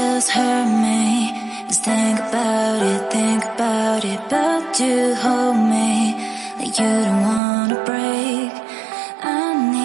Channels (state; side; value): drops out; left; at 7.4 s